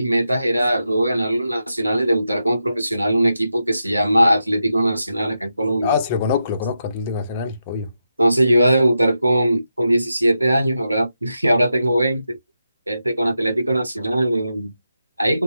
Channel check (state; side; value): inverted; both; correlation -0.87